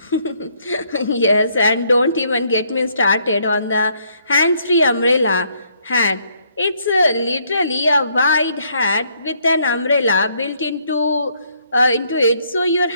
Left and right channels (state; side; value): inverted; both; correlation -0.69